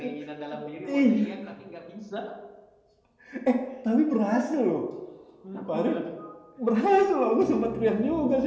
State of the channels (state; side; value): identical; both; correlation 1.00